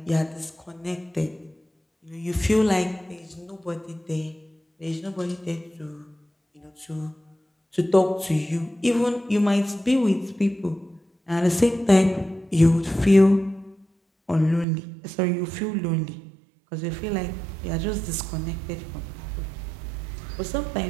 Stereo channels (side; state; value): left; drops out; at 14.7 s